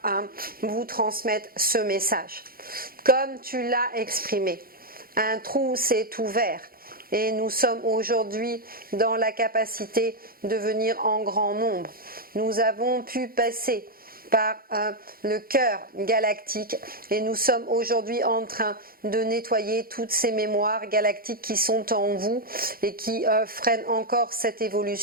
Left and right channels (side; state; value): left; late; 0.43 ms